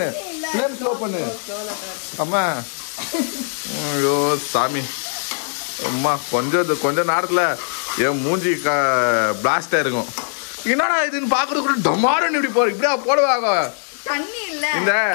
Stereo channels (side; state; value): right; silent; digital silence